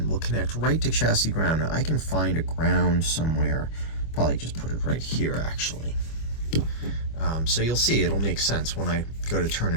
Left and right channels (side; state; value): right; late; 25 ms